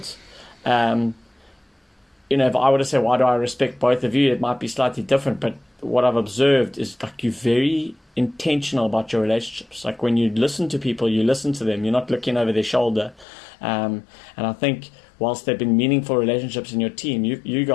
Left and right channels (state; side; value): drops out; right; at 13.2 s